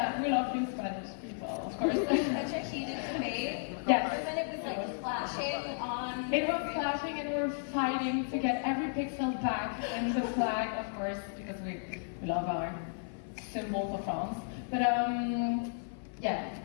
we love you Spanish people, of course. Such a heated debate. Yes. And then it was like flashing on. It was flashing and we were fighting to get every pixel back and the flag, of course, because we love our symbol for France. But yeah,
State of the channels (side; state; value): right; silent; 55 dB below the other